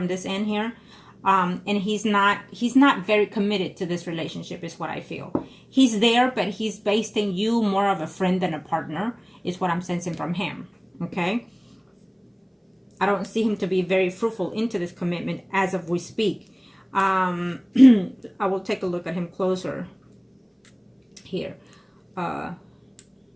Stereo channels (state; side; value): identical; both; correlation 1.00